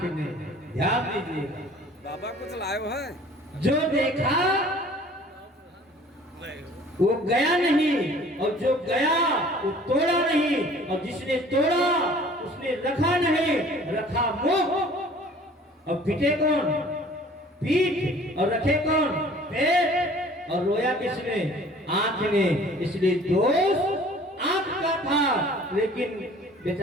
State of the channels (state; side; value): normal; both; correlation 0.50